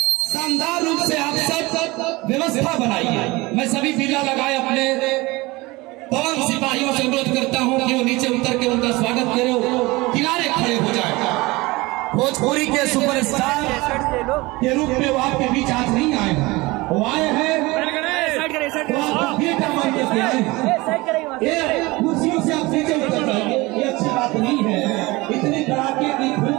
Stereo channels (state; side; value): quieter; left; 22.2 dB